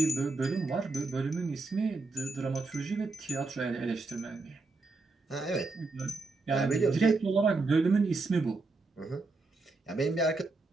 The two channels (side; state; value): left; quieter; 3.6 dB